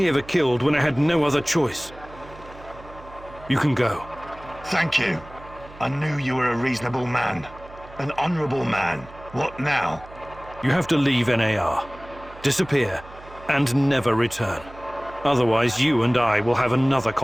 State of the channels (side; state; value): right; noise; hum, 19 dB below the sound